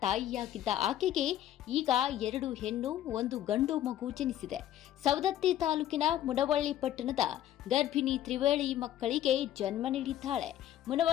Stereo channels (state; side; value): quieter; right; 12.1 dB